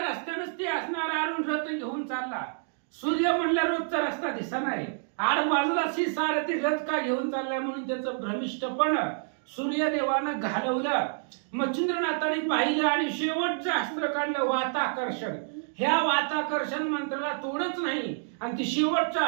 ते असणार अरुण रथ घेऊन चालला. सूर्य म्हणला रोजचा रस्ता दिसा नाही, आड बाजूला सारथी रथ का घेऊन चाललाय म्हणून त्याचं भ्रमिष्टपण सूर्यदेवानं घालवलं. मच्छिंद्रनाथाने पाहिलं आणि शेवटचं अस्त्र काढलं वाताकर्षण. ह्या वाताकर्षण मंत्राला तोडच नाही आणि ती शेवटच्या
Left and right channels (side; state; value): left; silent; digital silence